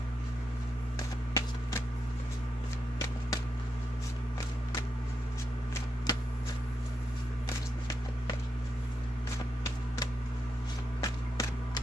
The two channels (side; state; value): both; normal; correlation 0.84